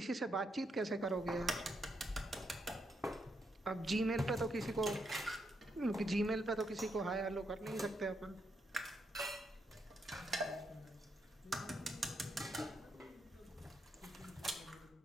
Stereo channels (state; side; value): normal; both; correlation 0.80